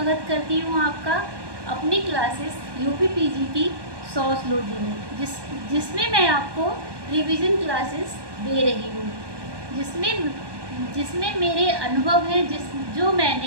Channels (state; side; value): late; left; 1.2 ms